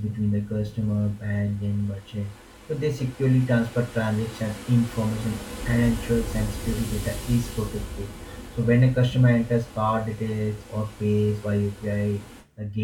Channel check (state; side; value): identical; both; correlation 1.00